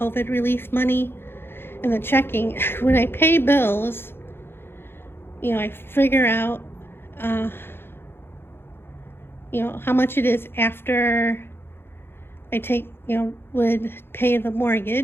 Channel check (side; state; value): right; late; 0.11 ms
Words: relief money, and the checking. When I pay bills, I figure out, how much it is after I would pay the